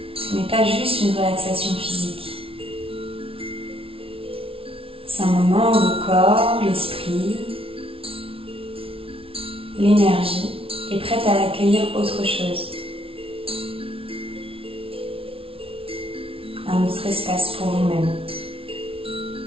Ce n'est pas juste une relaxation physique. C'est un moment où le corps, l'esprit, l'énergie est prête à accueillir autre chose. Un autre espace pour vous-même.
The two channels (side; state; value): left; late; 0.26 ms